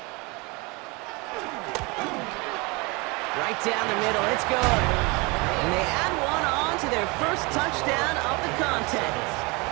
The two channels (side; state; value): left; quieter; 27.0 dB